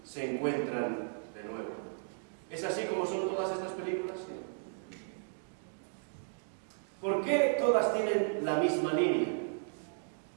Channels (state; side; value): silent; left; digital silence